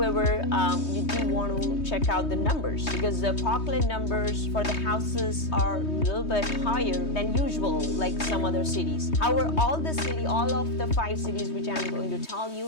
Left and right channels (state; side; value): late; right; 3.2 ms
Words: you do want to check out the numbers, because the Parkland numbers for the houses are a little bit higher than usual, like some other cities. However, all of the 5 cities which I'm going to tell you,